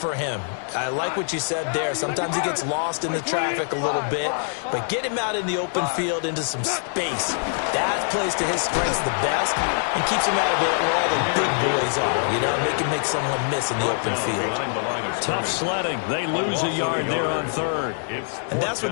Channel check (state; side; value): silent; right; digital silence